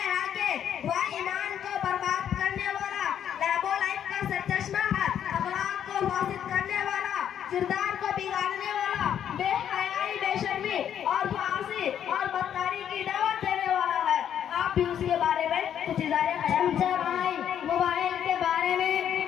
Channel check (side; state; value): right; quieter; 9.4 dB